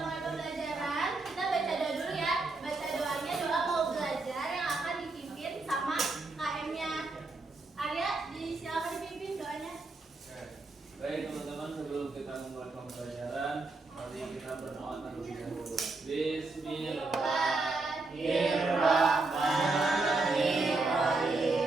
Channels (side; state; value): left; quieter; 3.4 dB